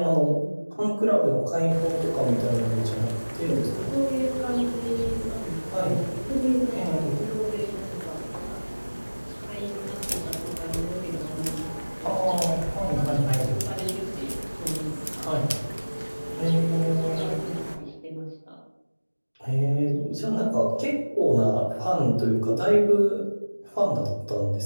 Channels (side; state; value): both; inverted; correlation -1.00